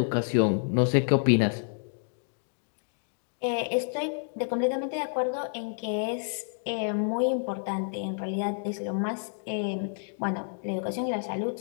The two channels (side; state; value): right; silent; digital silence